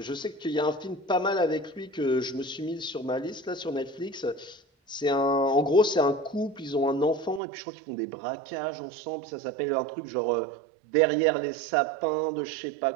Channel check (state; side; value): drops out; left; at 7.4 s